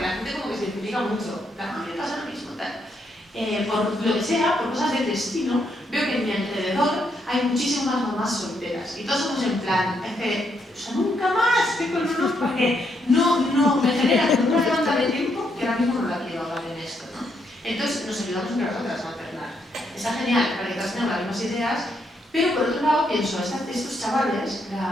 la gente como que se identifica mucho, la gente pasa lo mismo, tal. Por lo que sea, por cosas del destino, veo que en mi alrededor hay muchísimas mamás solteras y todos somos en plan, es que, o sea, nunca más tengo el honor porque no me genera una demanda de tiempo que ahora mismo no la quiero hablar en esto, ¿no? Entonces nos ayudamos entre nosotras a alternar. Está genial para que todas tengamos las mismas ideas, pero por otro lado pienso, estos chavales,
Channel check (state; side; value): normal; both; correlation 0.77